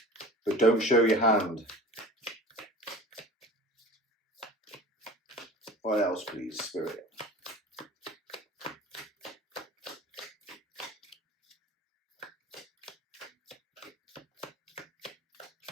but don't show your hand. What else, please, Spirit?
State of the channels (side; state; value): both; normal; correlation 0.39